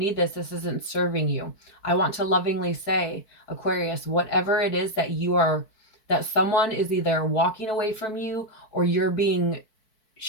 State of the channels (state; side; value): late; right; 4.6 ms